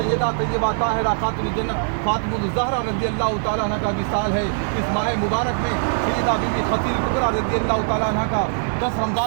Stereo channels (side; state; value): left; silent; 59 dB below the other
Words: طیبہ طاہرہ خاتون جنت فاطمہ الزہرا رضی اللہ تعالیٰ عنہ کا وصال ہے۔ اس ماہ مبارک میں سیدہ بی بی خدیجہ کبریٰ رضی اللہ تعالیٰ عنہ کا 10